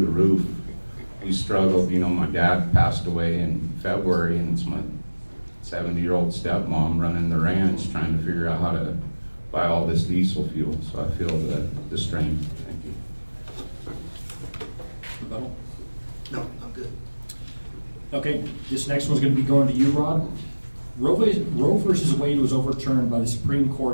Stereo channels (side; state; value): both; inverted; correlation -1.00